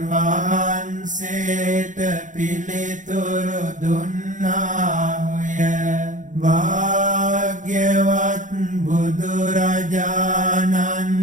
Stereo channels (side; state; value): left; late; 0.37 ms